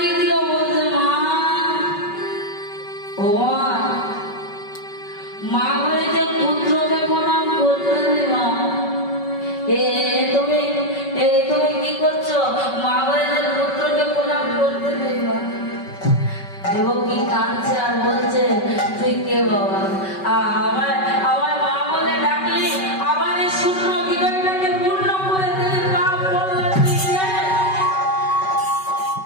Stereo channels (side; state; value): right; late; 5.3 ms